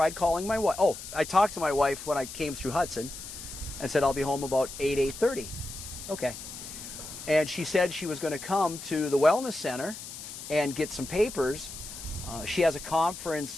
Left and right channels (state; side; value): noise; left; hiss, 11 dB below the sound